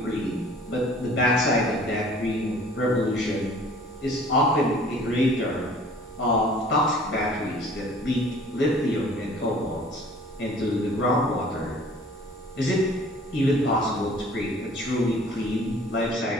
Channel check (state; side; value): normal; both; correlation 0.51